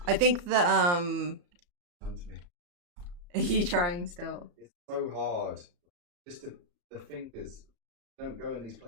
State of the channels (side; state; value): left; late; 34 ms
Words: I think that, Done to me. Are you trying still? It's so hard. Just the fingers don't go in these